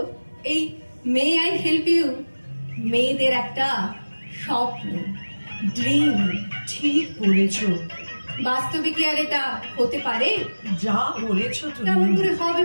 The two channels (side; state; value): both; inverted; correlation -1.00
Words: এই মে আই হেল্প ইউ মেয়েদের একটা স্বপ্ন, ড্রিম। ঠিক বলেছ। বাস্তবে কি আর এটা হতে পারে? যা বলেছ কেমন তুমি। করে হবে